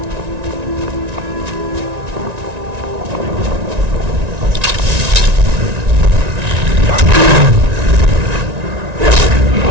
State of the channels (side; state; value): left; late; 1.9 ms